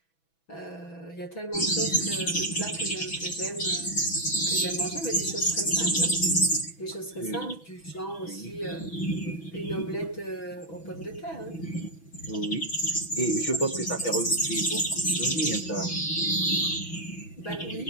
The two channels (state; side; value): late; right; 6.1 ms